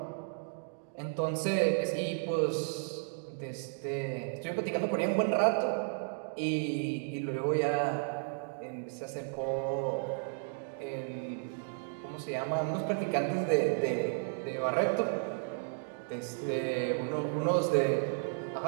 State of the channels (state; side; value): silent; left; digital silence